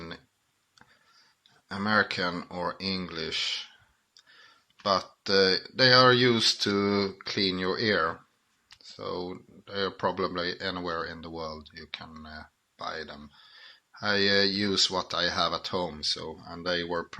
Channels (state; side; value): identical; both; correlation 1.00